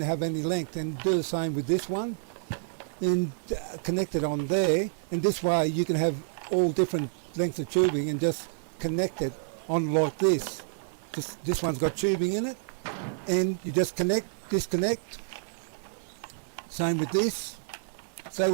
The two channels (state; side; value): silent; left; 59 dB below the other